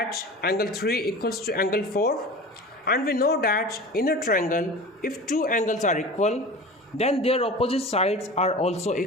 angle 3 equals to angle 4, and we know that in a triangle if two angles are equal then their opposite sides are also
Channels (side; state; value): both; normal; correlation 0.35